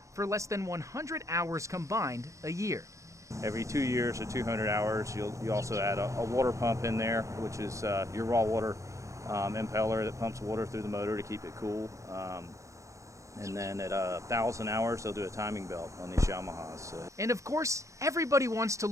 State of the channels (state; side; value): late; left; 0.15 ms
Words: for less than 100 hours combined a year. Every 2 years or 200 hours, you also add a water pump in there, which is your raw water impeller that pumps water through the motor to keep it cool. And then at 1,000 hours, they'll do a timing belt on these Yamahas. And of course, everybody wants to